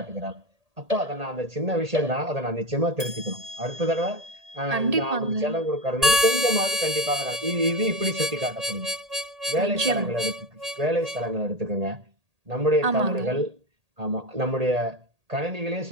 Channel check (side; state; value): left; late; 1.8 ms